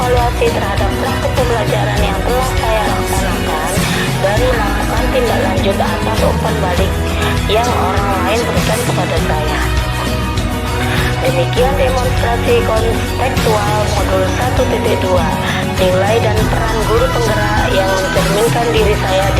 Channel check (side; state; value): both; identical; correlation 1.00